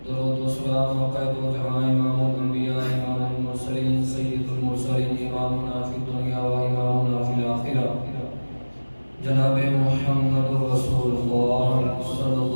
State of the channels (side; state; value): both; inverted; correlation -1.00